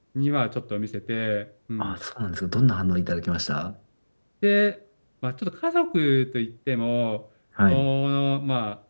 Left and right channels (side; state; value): both; inverted; correlation -1.00